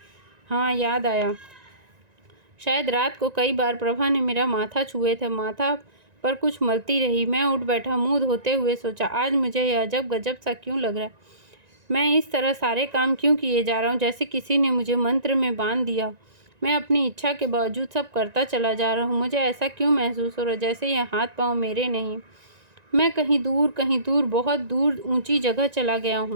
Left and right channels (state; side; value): late; left; 1.9 ms